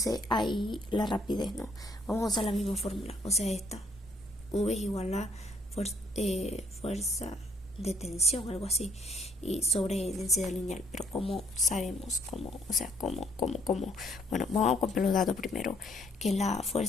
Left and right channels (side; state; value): both; normal; correlation 0.66